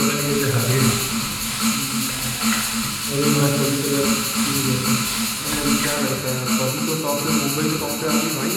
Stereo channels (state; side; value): identical; both; correlation 1.00